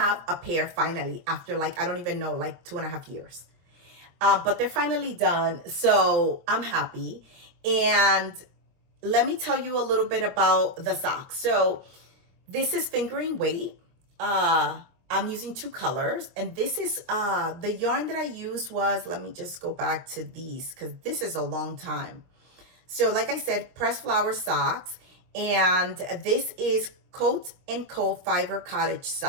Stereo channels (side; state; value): left; late; 23 ms